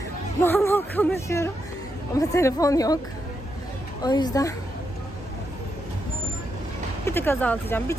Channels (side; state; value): both; normal; correlation 0.83